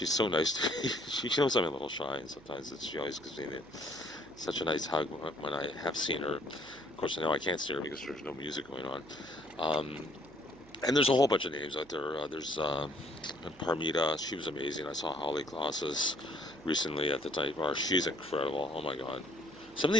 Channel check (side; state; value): right; noise; hum, 23 dB below the sound